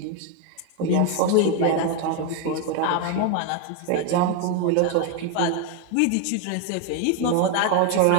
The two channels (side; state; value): both; different; correlation 0.01